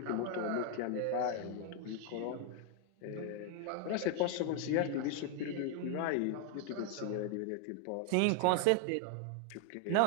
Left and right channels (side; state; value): both; different; correlation 0.00